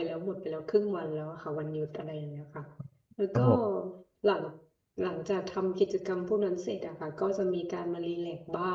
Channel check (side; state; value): both; identical; correlation 1.00